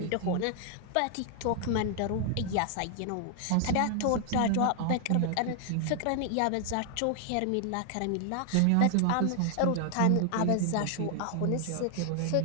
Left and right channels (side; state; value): both; different; correlation 0.00